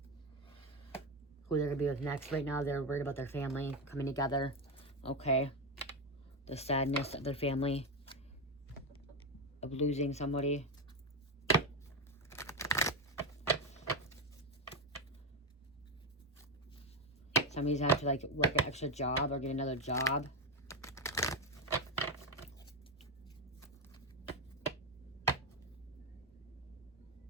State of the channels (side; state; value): both; normal; correlation 0.10